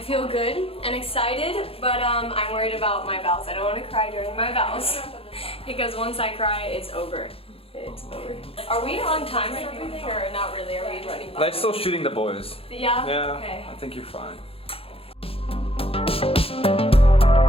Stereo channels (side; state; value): right; late; 0.27 ms